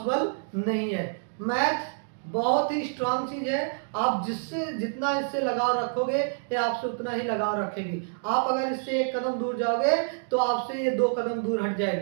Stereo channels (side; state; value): left; silent; digital silence